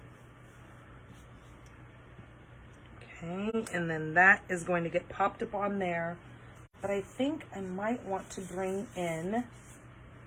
Okay, and then that is going to get popped up on there. But I think I might want to bring in,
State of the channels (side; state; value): both; identical; correlation 1.00